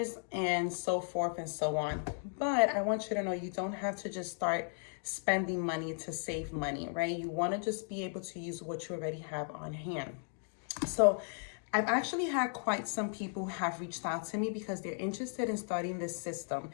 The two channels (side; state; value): right; silent; 54 dB below the other